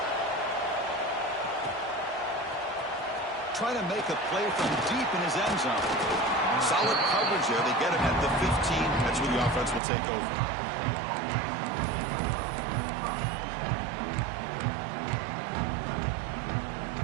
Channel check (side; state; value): left; drops out; at 9.8 s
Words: Trying to make a play from deep in his end zone. Solid coverage there. They get him at the 15. That's where the offense will take over.